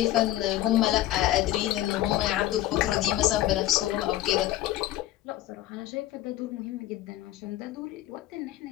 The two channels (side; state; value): right; quieter; 14.3 dB